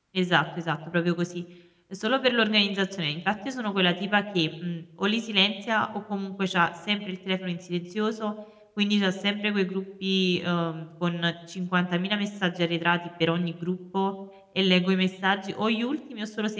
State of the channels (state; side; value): identical; both; correlation 1.00